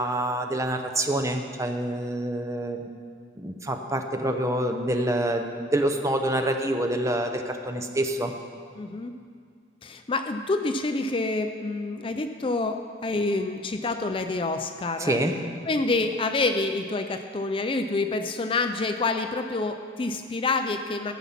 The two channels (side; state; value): both; normal; correlation 0.47